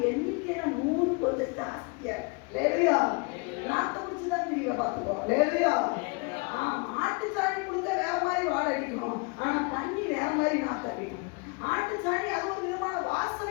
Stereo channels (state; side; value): quieter; right; 30.8 dB